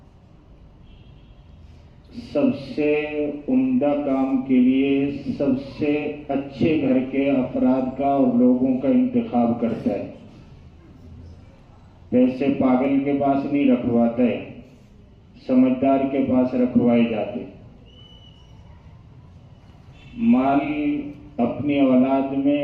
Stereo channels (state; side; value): identical; both; correlation 1.00